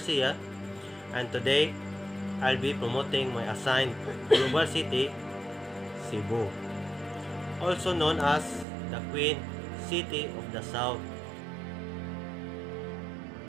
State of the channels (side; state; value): left; drops out; at 8.7 s